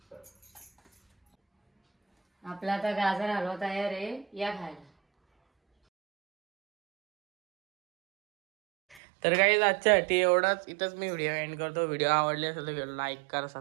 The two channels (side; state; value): left; drops out; at 9.0 s